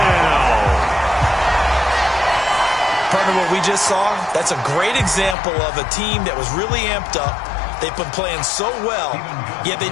Partner, what we just saw, that's a great example of a team that was really amped up. They've been playing so well, yet they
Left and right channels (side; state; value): right; drops out; at 5.4 s